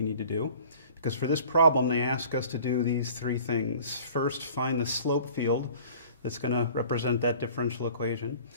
need to do. Because for this problem, they ask us to do these three things. First, find the slope field that's going to represent that differential equation.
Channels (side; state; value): both; inverted; correlation -0.48